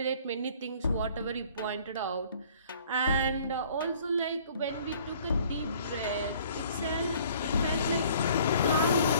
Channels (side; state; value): both; inverted; correlation -0.55